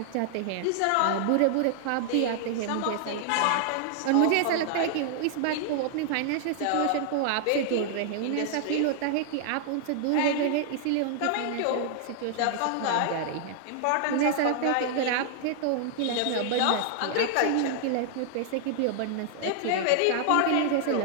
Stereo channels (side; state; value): both; different; correlation -0.01